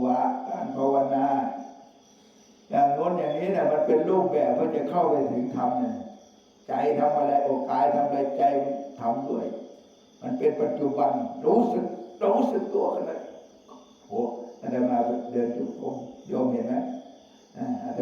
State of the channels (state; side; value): identical; both; correlation 1.00